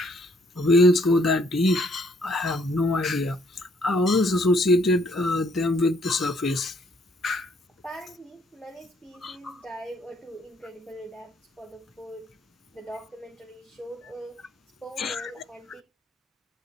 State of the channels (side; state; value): both; normal; correlation 0.66